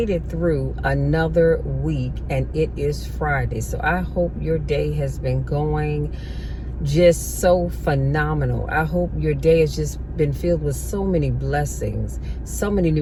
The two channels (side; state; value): both; identical; correlation 1.00